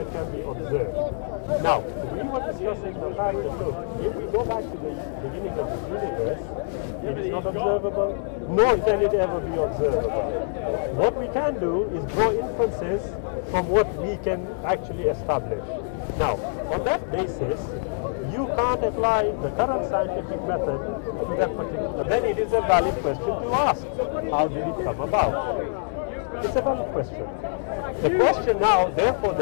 can be observed. Now, we were discussing the fact that, look, if we go back to the beginning of the universe, it is not observable, nor can it ever be observable. What we can do is draw inferences from what we can actually establish. Now, on that basis, you can't apply the current scientific method to that particular. Then it is a valid question to ask. How did it come about? It's a valid question. The question now, therefore,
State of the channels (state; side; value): silent; right; digital silence